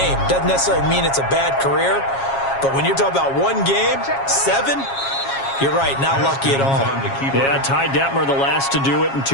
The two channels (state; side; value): late; right; 7.3 ms